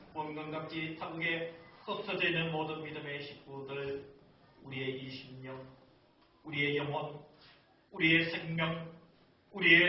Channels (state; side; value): identical; both; correlation 1.00